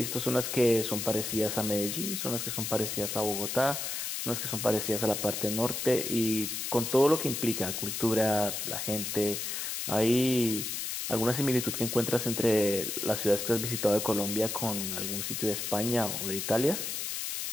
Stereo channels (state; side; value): noise; left; hiss, 3 dB below the sound